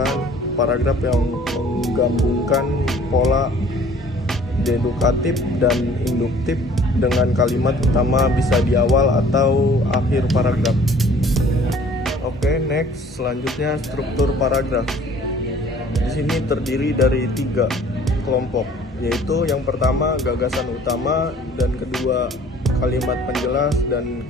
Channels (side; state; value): both; normal; correlation 0.53